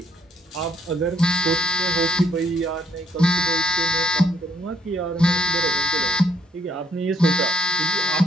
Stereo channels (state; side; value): normal; both; correlation 0.69